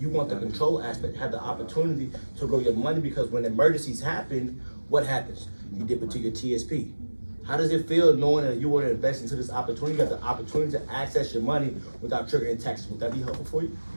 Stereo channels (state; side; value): inverted; both; correlation -1.00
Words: want the control aspect, have the opportunity to grow your money, because when emergencies happen, what happens? You dip into your TSP. How does it feel knowing that you want to invest into this opportunity? You have the opportunity to access your money without triggering taxes. Would that be helpful for you?